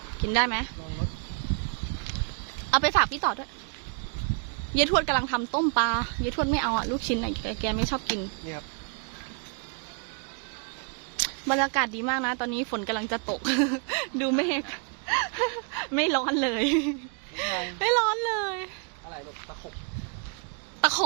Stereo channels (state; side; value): quieter; left; 39.9 dB